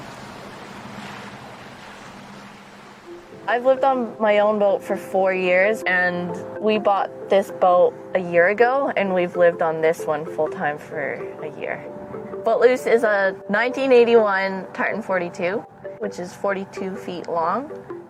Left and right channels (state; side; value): identical; both; correlation 1.00